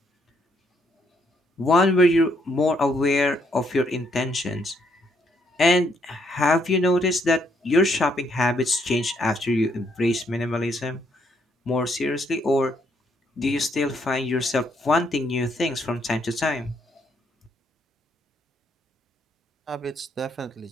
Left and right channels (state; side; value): normal; both; correlation 0.72